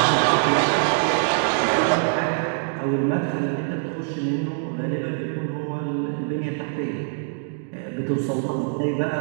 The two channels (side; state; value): left; silent; digital silence